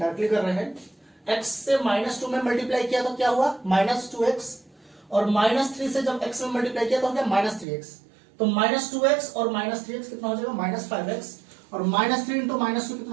कर रहे हैं, x से माइनस 2 में मल्टीप्लाई किया तो क्या हुआ माइनस 2x, और माइनस 3 से जब x में मल्टीप्लाई किया तो हो गया माइनस 3x, तो माइनस 2x और माइनस 3x कितना हो जाएगा माइनस 5x, और माइनस 3 इंटू माइनस 2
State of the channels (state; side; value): drops out; left; at 7.7 s